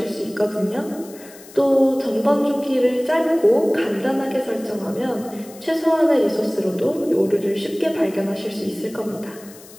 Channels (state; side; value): noise; left; hiss, 20 dB below the sound